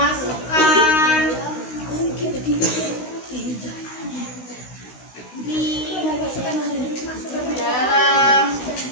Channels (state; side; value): late; right; 16 ms